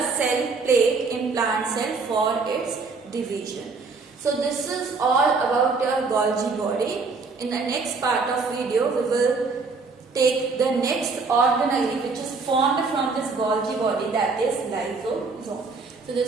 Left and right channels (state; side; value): quieter; left; 4.3 dB